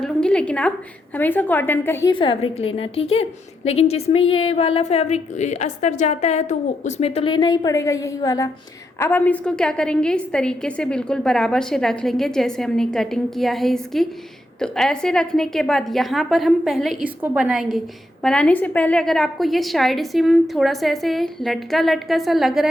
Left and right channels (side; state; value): both; normal; correlation 0.81